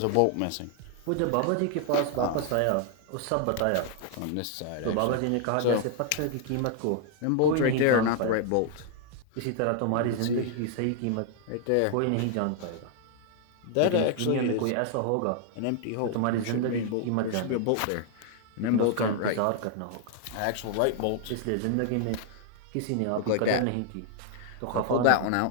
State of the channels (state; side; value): different; both; correlation 0.00